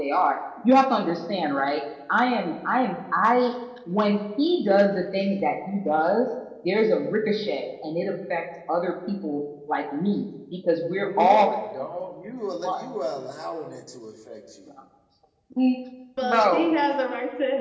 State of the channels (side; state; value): both; identical; correlation 1.00